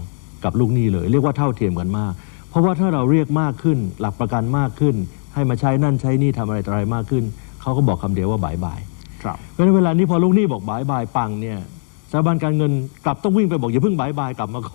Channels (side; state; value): right; silent; digital silence